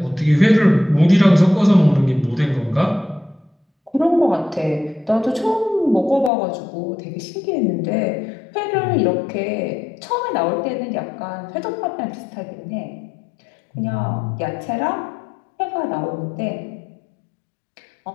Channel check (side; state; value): right; drops out; at 6.3 s